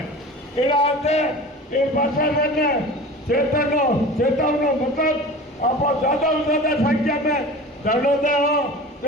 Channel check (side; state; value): both; normal; correlation 0.36